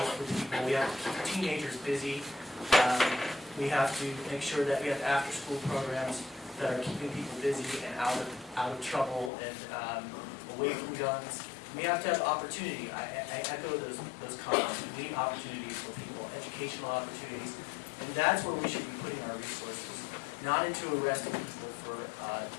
for people. We have to keep teenagers busy. We have to make sure that we have after-school programs that are keeping people busy and out of trouble and away from guns. We have to have opportunity. I echo those comments. We need opportunities for people, educational opportunities, and that's where we should be putting our resources, not into arresting people for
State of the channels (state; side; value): drops out; right; at 9.3 s